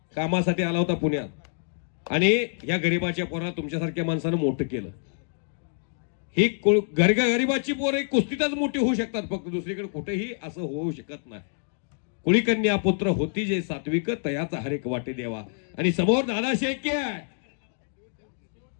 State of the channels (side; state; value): right; silent; digital silence